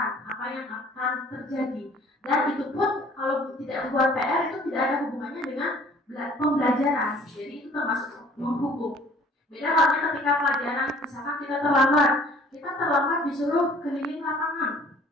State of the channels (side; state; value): both; normal; correlation 0.53